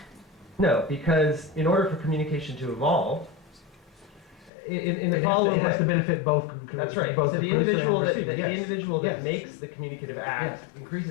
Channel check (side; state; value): right; drops out; at 4.5 s